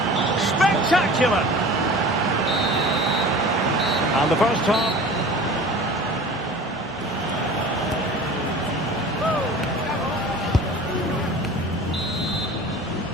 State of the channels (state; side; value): normal; both; correlation 0.40